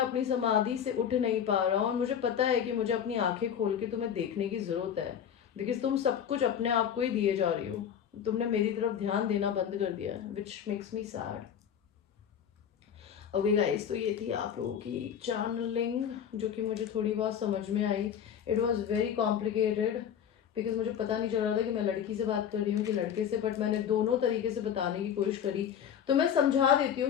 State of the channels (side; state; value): right; quieter; 8.7 dB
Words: अपनी समाधि से उठ नहीं पा रहा हूँ और मुझे पता है कि मुझे अपनी आंखें खोल के तुम्हें देखने की ज़रूरत है, बिकॉज तुम सब कुछ अपने आप को ही दिए जा रही हो। तुमने मेरी तरफ ध्यान देना बंद कर दिया है, which makes me sad. Okay guys, तो ये थी आप लोगों की चैनलिंग जो कि मुझे थोड़ी बहुत समझ में आई। It was very complicated because मुझे पता नहीं चल रहा था कि मैं लड़की से बात कर रही हूँ कि लड़के से, बट मैंने दोनों तरीके से बताने की कोशिश करी। तो मैं समझा देती